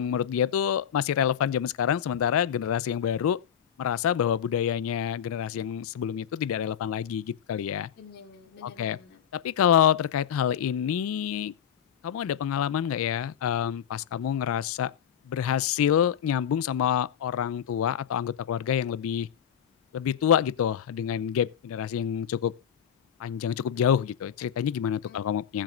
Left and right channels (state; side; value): quieter; right; 8.9 dB